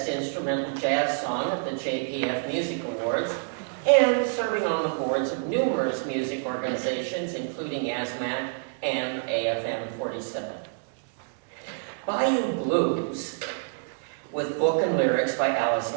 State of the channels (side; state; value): left; silent; digital silence